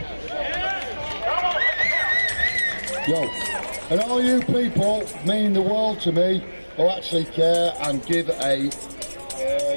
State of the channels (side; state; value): both; inverted; correlation -1.00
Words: Yo, and all you people mean the world to me who actually care and give a